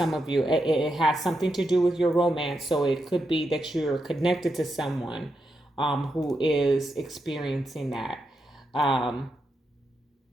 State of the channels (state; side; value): normal; both; correlation 0.85